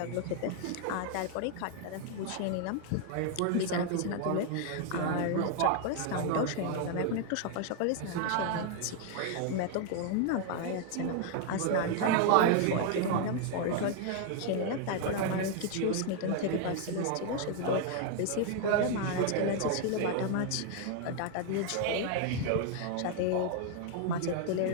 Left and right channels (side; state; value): both; different; correlation 0.00